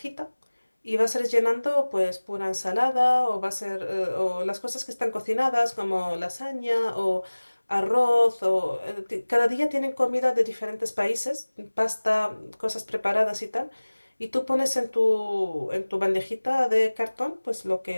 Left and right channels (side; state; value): both; inverted; correlation -1.00